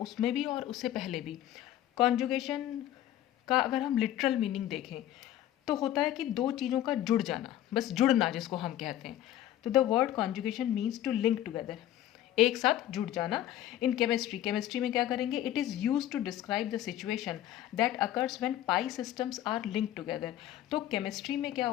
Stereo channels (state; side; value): quieter; right; 12.5 dB